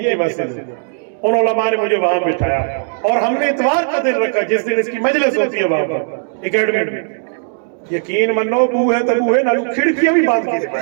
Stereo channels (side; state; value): left; silent; digital silence